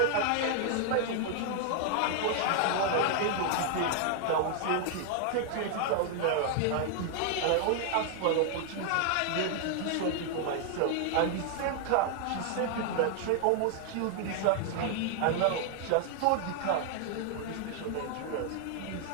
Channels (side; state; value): both; different; correlation 0.00